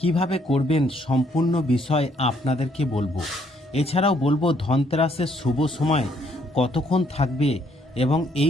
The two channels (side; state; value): both; normal; correlation 0.68